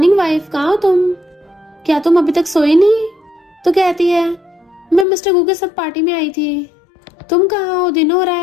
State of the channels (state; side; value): drops out; right; at 5.1 s